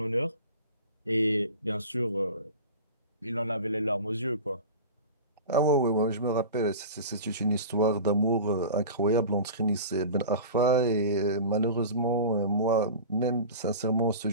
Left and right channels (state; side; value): inverted; both; correlation -0.34